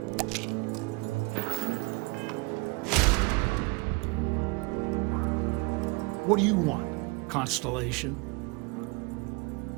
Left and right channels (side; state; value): left; quieter; 27.8 dB